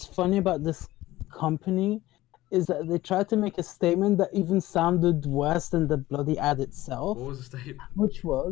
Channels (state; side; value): quieter; right; 16.9 dB